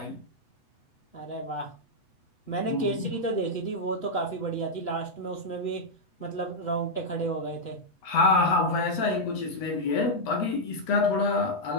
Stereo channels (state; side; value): late; right; 8.0 ms